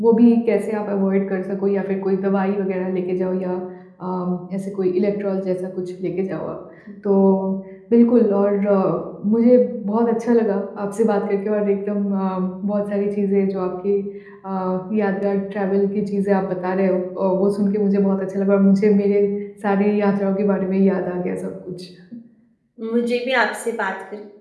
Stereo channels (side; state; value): both; identical; correlation 1.00